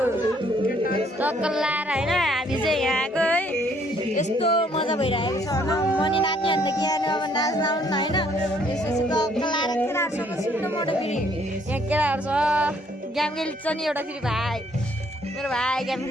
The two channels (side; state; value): both; normal; correlation 0.65